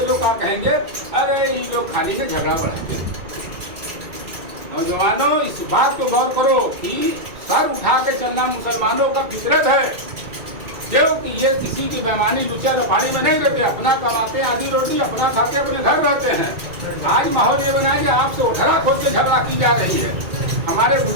लोग क्या कहेंगे? अरे ये लोग खाली से झगड़ा बढ़ाएंगे। नौजवानों, इस बात को गौर करो कि सर उठा के चलना मुसलमानों का फितरत है, क्योंकि ये किसी की बेईमानी लुचा लफाड़ी में नहीं रहते। अपना कमाते आधी रोटी, अपना खाते, अपने घर रहते हैं। आज माहौल ये बनाए कि आपसे उठरा खोद के झगड़ा की जा रही है। हमारे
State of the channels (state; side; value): late; left; 2.2 ms